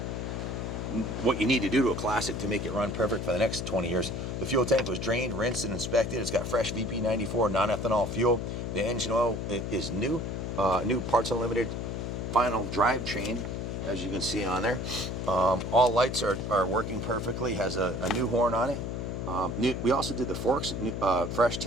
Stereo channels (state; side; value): noise; left; hum, 4 dB below the sound